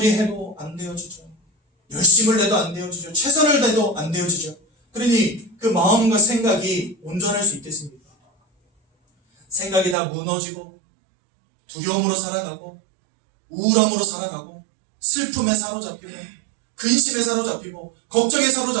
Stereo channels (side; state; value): left; drops out; at 10.0 s